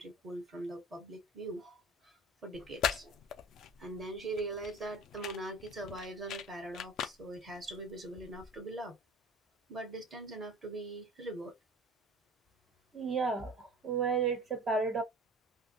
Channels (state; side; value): normal; both; correlation 0.40